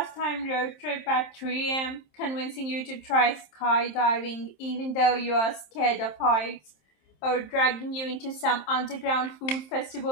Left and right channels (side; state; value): right; late; 27 ms